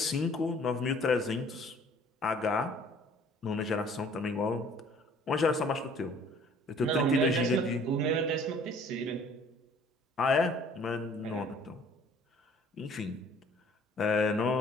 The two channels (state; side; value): normal; both; correlation 0.54